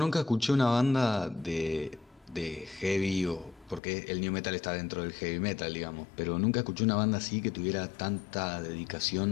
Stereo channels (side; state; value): right; drops out; at 3.8 s